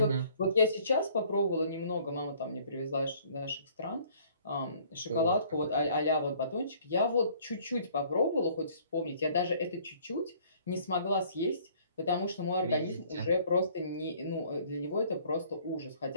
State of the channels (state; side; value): inverted; both; correlation -0.57